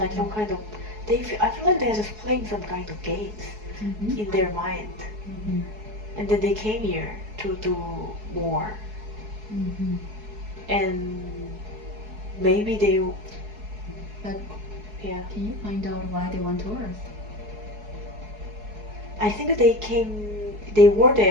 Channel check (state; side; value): late; left; 4.7 ms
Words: some kind of. I feel like they're just playing some kind of games in their mind, and then they came here to do more, and maybe they. But Yeah. can you find out why they went to Earth? I think they were